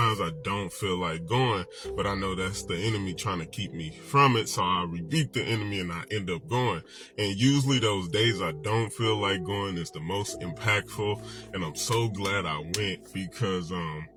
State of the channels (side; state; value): both; identical; correlation 1.00